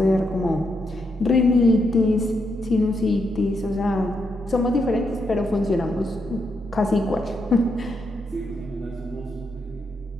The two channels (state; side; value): normal; both; correlation 0.80